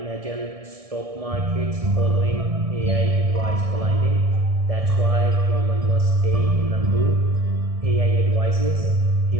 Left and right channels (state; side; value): late; left; 1.6 ms